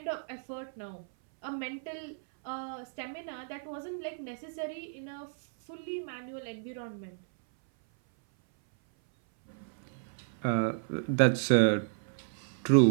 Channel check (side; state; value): left; silent; 56 dB below the other